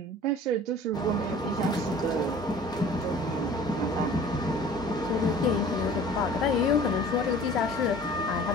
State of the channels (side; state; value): both; normal; correlation 0.47